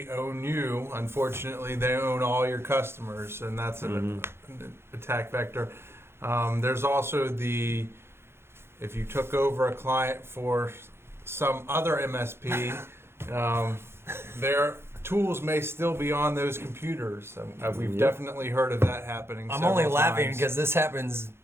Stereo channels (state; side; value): late; left; 0.12 ms